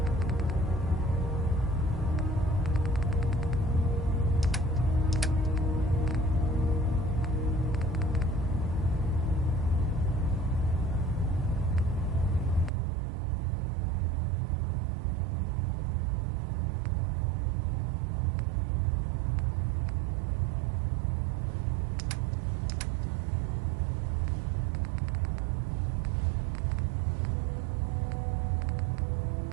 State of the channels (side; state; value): left; drops out; at 12.7 s